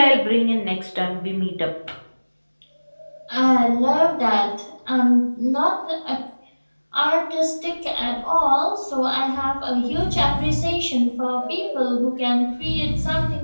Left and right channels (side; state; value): both; inverted; correlation -1.00